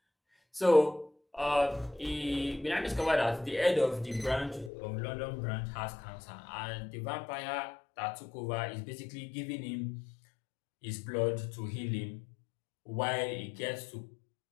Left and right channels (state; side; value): drops out; right; at 4.7 s